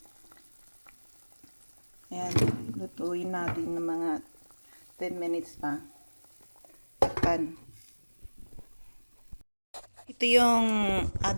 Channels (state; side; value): inverted; both; correlation -1.00